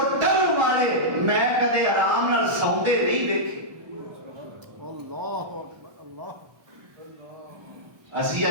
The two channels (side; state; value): left; late; 1.2 ms